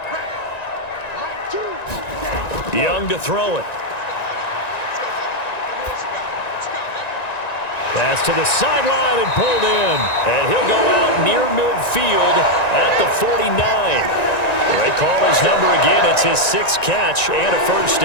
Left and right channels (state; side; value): late; right; 1.9 ms